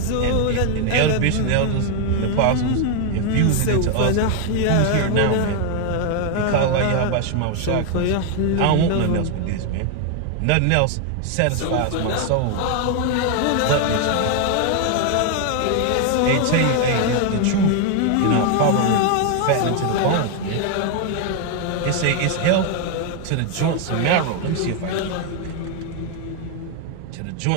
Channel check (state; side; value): different; both; correlation 0.01